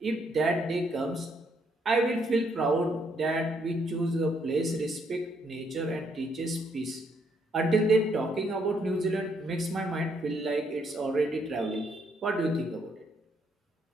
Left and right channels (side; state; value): both; normal; correlation 0.72